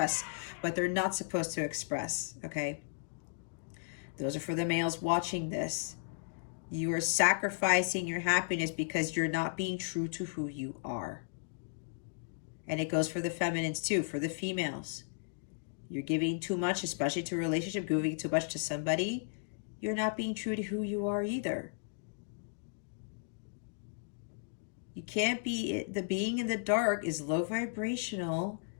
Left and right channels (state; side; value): silent; right; digital silence